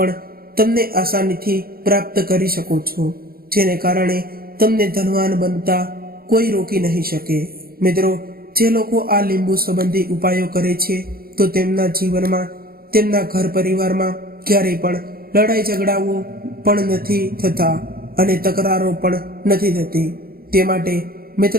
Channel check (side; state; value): left; late; 0.43 ms